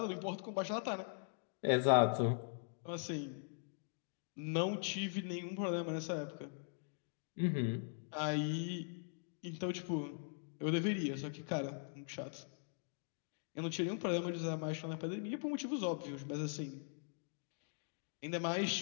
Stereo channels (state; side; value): silent; right; digital silence